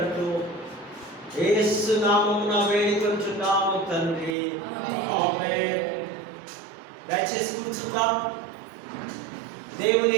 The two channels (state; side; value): drops out; left; at 4.4 s